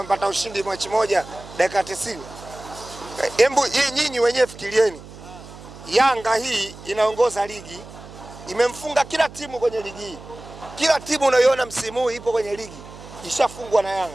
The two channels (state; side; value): noise; right; hum, 17 dB below the sound